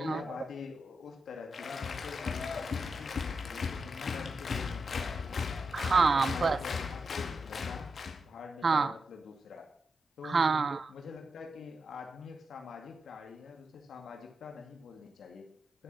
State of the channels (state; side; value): normal; both; correlation 0.87